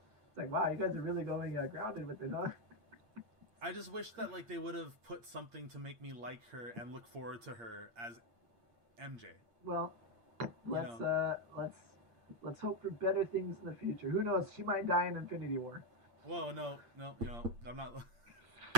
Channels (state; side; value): late; left; 8.6 ms